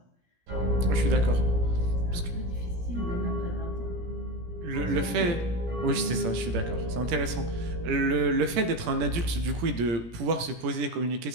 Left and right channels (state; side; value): late; left; 17 ms